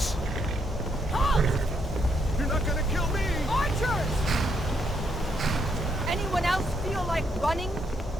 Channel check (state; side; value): normal; both; correlation 0.75